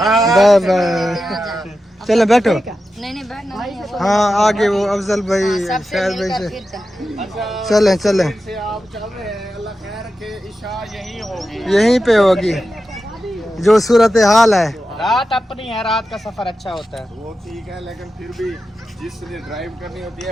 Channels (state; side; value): normal; both; correlation 0.91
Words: bye. चलो बैठो। नहीं नहीं बैठना नहीं है। हाँ आगे वो अफजल भाई सबसे शायद भाई मिलकर से फिर चल। चलें चलें। से आप चल रहे हैं, अल्लाह खैर रखे, इशा यही होगी। यहीं पे होगी जो सूरत हाल है। रात अपनी है, रात का सफर अच्छा होता है। वो ठीक है, लेकिन फिर भी जिसने ड्राइव करनी होती